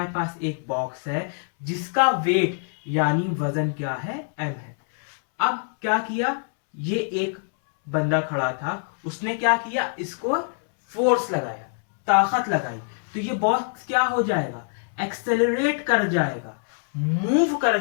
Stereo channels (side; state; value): right; silent; 62 dB below the other